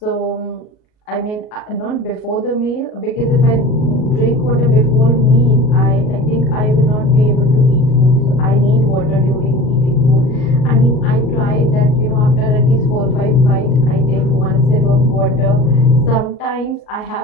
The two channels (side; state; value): right; late; 38 ms